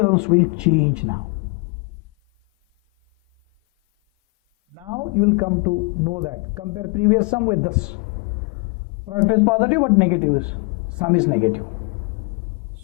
will change now. Now you will come to know that. Compare previous sum with this. Product is positive but negative is, sum is negative.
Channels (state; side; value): quieter; right; 30.4 dB